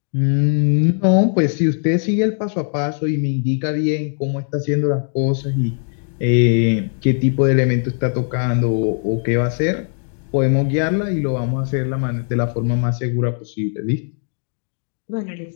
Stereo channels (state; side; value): silent; right; 55 dB below the other